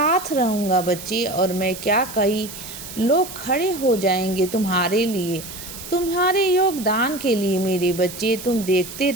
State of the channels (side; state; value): right; noise; hiss, 12 dB below the sound